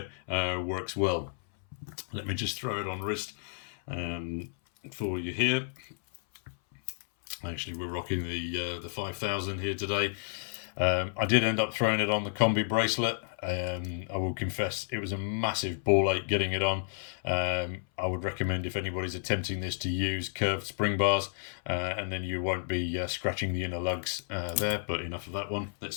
works well. Let me just throw it on wrist for you here. Actually, we're rocking the 5000 here today. I did end up throwing it on the combi bracelet. I will confess it was a massive ball ache getting it on. I would recommend, if anybody's attempting this, to use curved spring bars, and then you won't be scratching the inner lugs there. But enough of that one. Let's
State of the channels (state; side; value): silent; right; 57 dB below the other